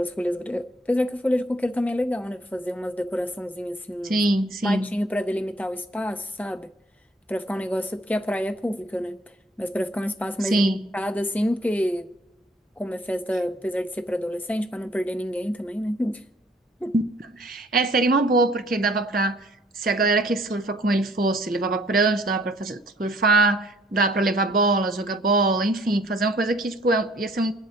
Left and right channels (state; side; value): normal; both; correlation 0.61